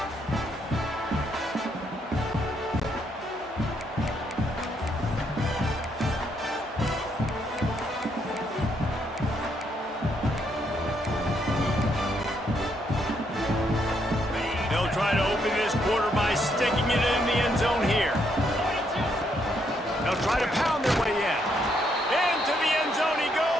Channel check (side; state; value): both; normal; correlation 0.74